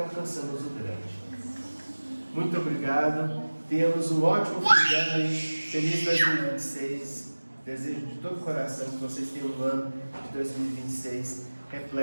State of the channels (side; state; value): both; inverted; correlation -1.00